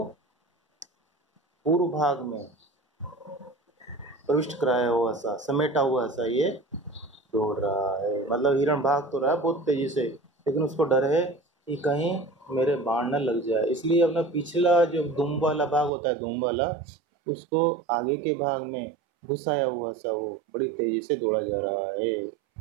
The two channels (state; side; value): drops out; left; at 15.9 s